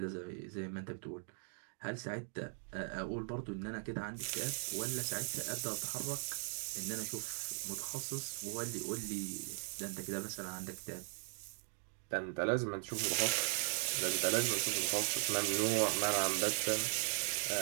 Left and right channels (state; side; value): silent; left; 52 dB below the other